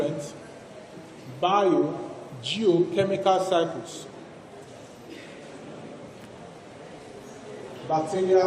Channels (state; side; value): identical; both; correlation 1.00